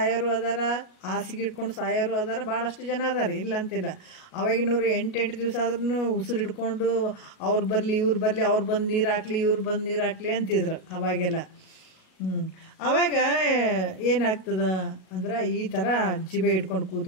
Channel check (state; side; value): late; right; 37 ms